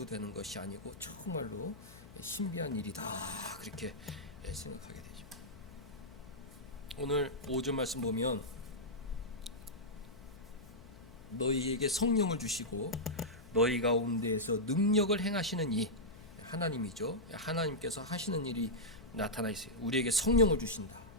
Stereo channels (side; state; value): left; noise; hum, 20 dB below the sound